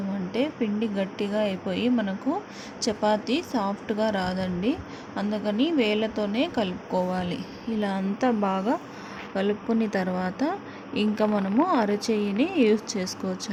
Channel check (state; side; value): identical; both; correlation 1.00